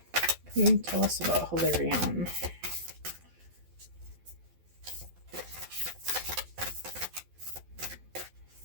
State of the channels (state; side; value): late; left; 12 ms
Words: Can you tell us about Hilarion?